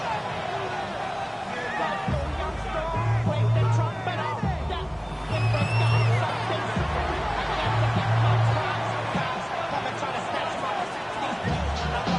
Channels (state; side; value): identical; both; correlation 1.00